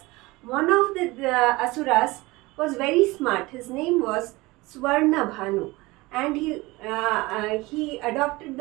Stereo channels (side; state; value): left; quieter; 21.8 dB